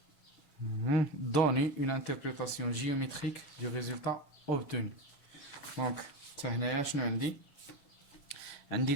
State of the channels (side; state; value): right; late; 7.0 ms